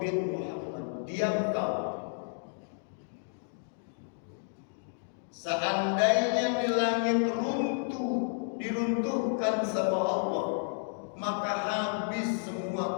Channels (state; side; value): silent; right; digital silence